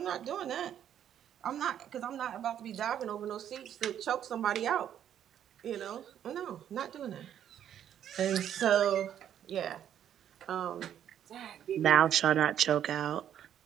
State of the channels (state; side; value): quieter; left; 10.0 dB